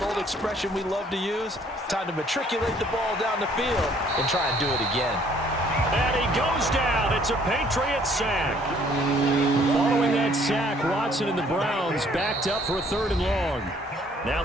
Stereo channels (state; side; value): normal; both; correlation 0.61